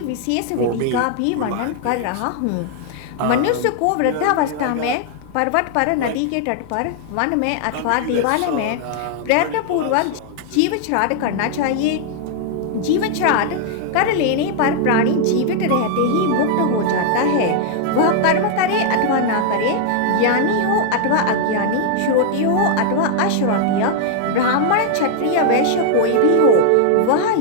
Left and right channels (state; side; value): different; both; correlation 0.00